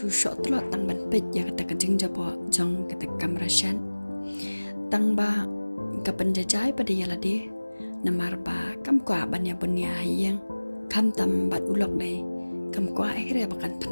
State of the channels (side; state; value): both; inverted; correlation -1.00